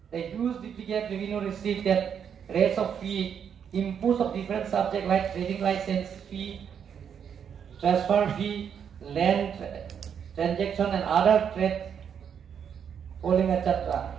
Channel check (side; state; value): left; quieter; 7.8 dB